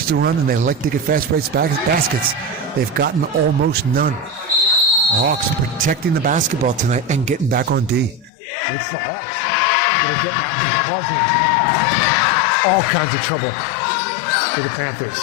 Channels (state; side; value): drops out; right; at 8.3 s